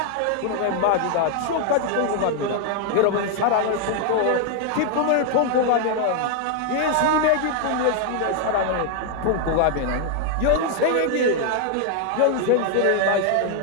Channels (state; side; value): different; both; correlation 0.00